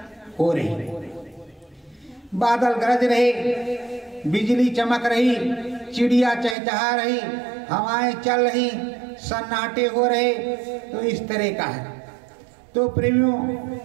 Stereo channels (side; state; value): left; drops out; at 6.6 s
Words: हो रही, बादल गरज रहे, बिजली चमक रही, चिड़िया चहचहा रही, हवाएं चल रही, सन्नाटे हो रहे। तो इस तरह का है। तो प्रेमियों